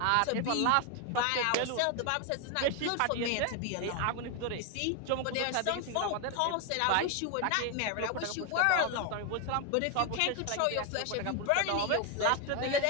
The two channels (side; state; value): both; different; correlation 0.01